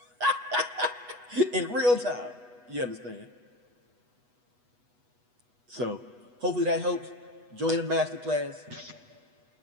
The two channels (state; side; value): late; left; 8.2 ms